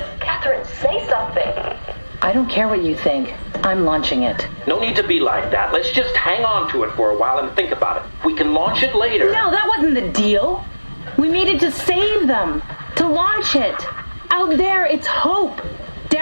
Catherine, say something. I don't care what you think. I'm launching it. No need to be like that. Let's just hang on to it for a while and think about it. We can launch it later. No, that wasn't the deal. We needed to save them. To launch it. Out there, it's hope.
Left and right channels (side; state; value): both; inverted; correlation -1.00